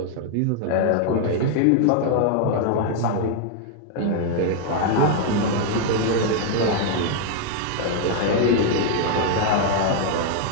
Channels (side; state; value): both; different; correlation 0.00